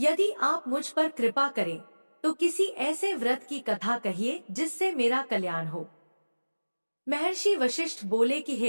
आप मुझ पर कृपा करें तो किसी ऐसे व्रत की कथा कहिए जिससे मेरा कल्याण हो। महर्षि वशिष्ठ बोले कि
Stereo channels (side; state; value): both; inverted; correlation -1.00